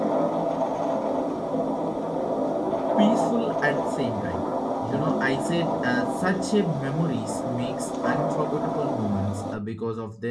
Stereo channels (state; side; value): identical; both; correlation 1.00